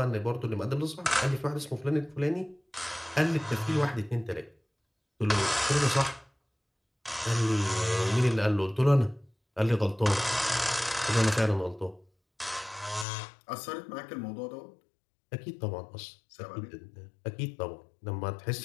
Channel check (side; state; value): right; drops out; at 13.1 s